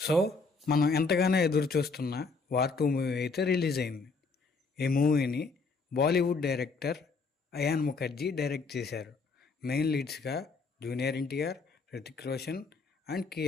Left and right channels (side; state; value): right; quieter; 4.2 dB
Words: So మనం ఎంతగానో ఎదురు చూస్తున్న వార్ 2 మూవీ అయితే రిలీజ్ అయింది. ఈ మూవీని Bollywood director Ayan Mukerji direct చేశారు. మెయిన్ లీడ్స్గా జూనియర్ ఎన్టీఆర్, హృతిక్ రోషన్ అండ్